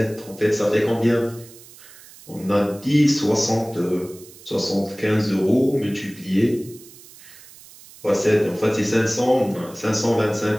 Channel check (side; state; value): right; noise; hiss, 21 dB below the sound